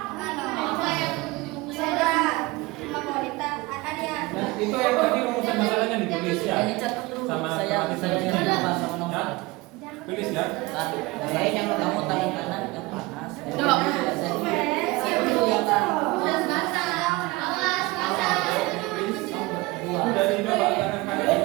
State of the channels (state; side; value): quieter; left; 22.1 dB